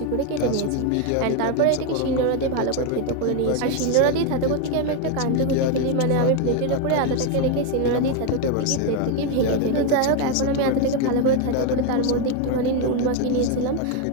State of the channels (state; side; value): different; both; correlation 0.02